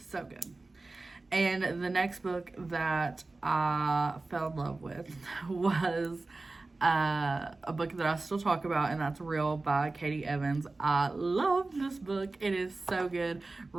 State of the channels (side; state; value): left; quieter; 3.3 dB